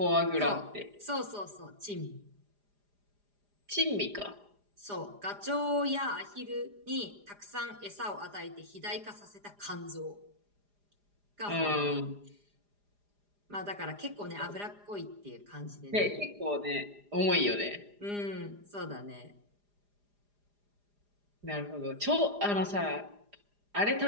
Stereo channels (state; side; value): late; left; 4.9 ms